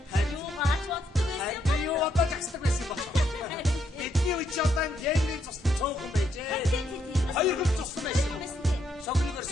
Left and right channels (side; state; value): both; normal; correlation 0.75